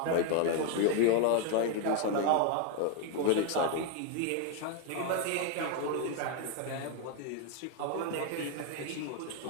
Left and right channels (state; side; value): different; both; correlation 0.01